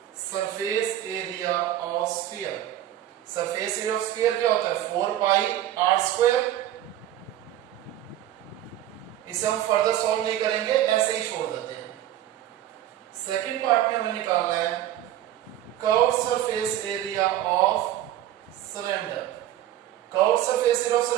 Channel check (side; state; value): left; quieter; 12.6 dB